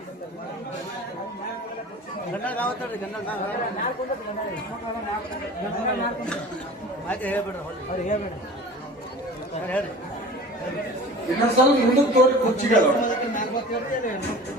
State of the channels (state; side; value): normal; both; correlation 0.39